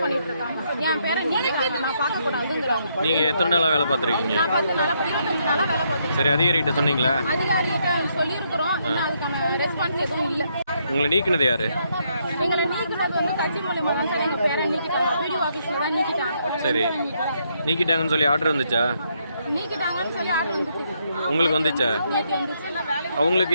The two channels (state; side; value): inverted; both; correlation -0.75